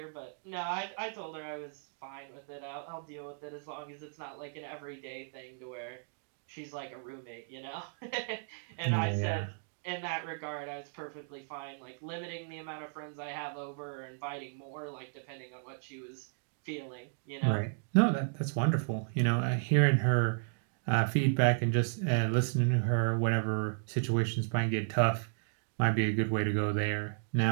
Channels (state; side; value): silent; left; digital silence